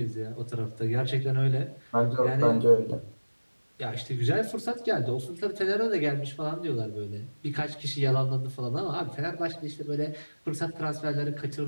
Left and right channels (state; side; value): inverted; both; correlation -1.00